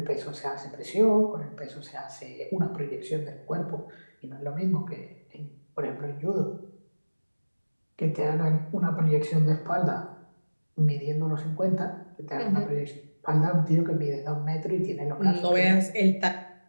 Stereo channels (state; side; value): inverted; both; correlation -1.00